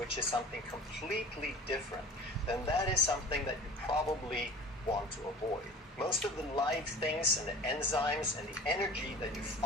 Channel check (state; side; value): normal; both; correlation 0.41